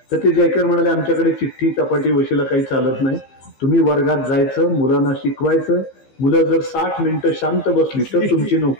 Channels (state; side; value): late; right; 15 ms